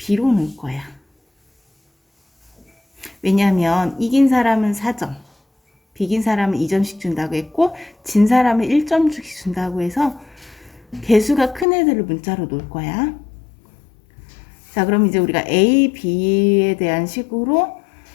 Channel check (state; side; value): drops out; right; at 11.7 s